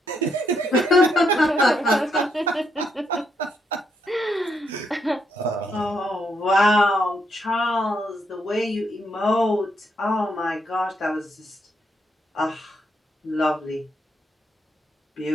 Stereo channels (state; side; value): normal; both; correlation 0.77